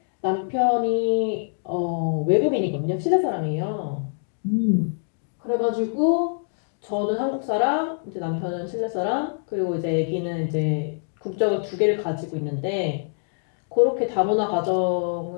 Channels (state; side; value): silent; right; digital silence